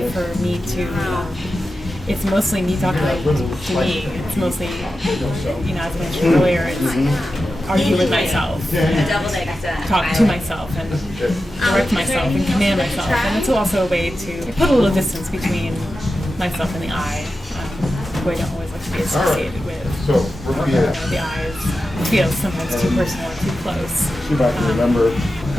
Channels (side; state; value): both; normal; correlation 0.92